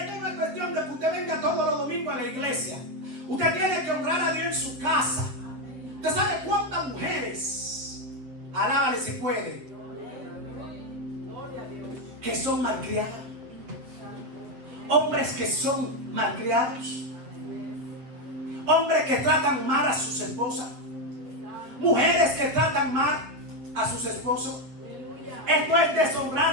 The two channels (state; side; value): late; left; 7.7 ms